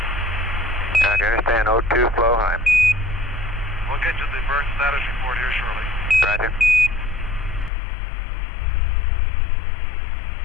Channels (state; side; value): drops out; right; at 7.7 s